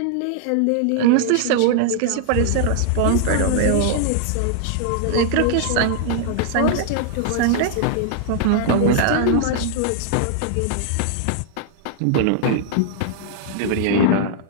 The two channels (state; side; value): different; both; correlation 0.00